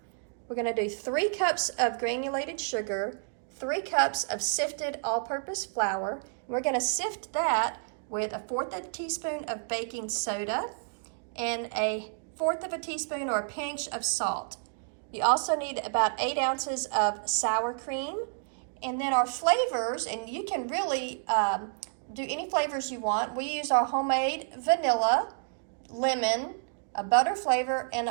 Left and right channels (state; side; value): silent; left; digital silence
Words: We're going to do 3 cups of granulated sugar, 3 cups of sifted all-purpose flour. We're going to sift that with 1/4 teaspoon of baking soda and 1/4 teaspoon or a pinch of salt. You also need about 8 ounces of sour cream. And then our flavors, and you can really do any flavors you want. We use our homemade vanilla, lemon, a butter flavor, and